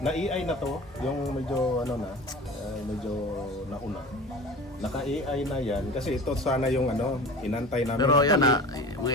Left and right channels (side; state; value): both; normal; correlation 0.36